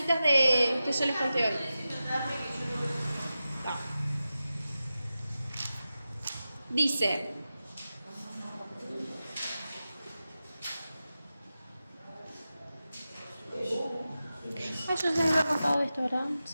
que yo les conté hoy. Dice, yo se me había contado esto, ¿verdad?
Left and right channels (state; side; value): inverted; both; correlation -0.93